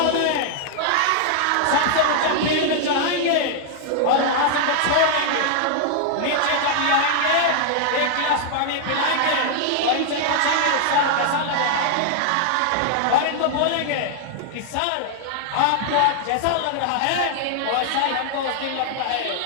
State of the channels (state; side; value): different; both; correlation -0.01